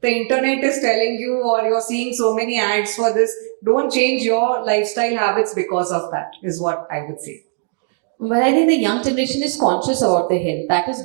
the internet is telling you or you're seeing so many ads for this. Don't change your lifestyle habits because of that, is what I would say. But I think the young generation is conscious about their health. That is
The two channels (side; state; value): left; silent; 57 dB below the other